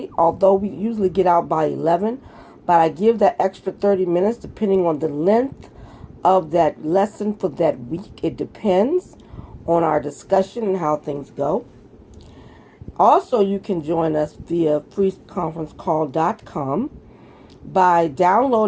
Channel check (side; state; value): both; identical; correlation 1.00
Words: although we usually get out by 11. But I give that extra 30 minutes depending on the length of that lesson for that week. It depends on our discussion and how things go. Also, you can join us via freeconferencecall.com by